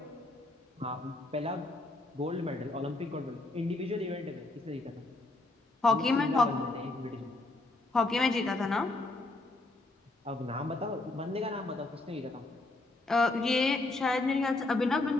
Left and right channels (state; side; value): quieter; right; 3.0 dB